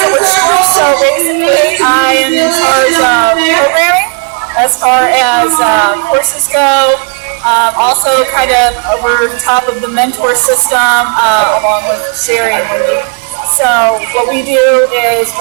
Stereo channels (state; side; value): quieter; left; 34.4 dB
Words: at Witch School, so basically I am in charge of programming as far as courses go. Also kind of over top of the mentor system along with Sherry and Wendy. So what we do is